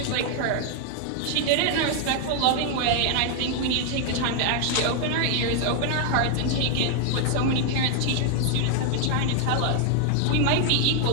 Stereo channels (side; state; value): both; different; correlation 0.00